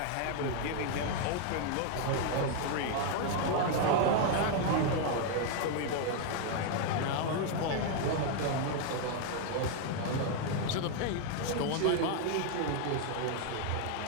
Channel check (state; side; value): different; both; correlation 0.00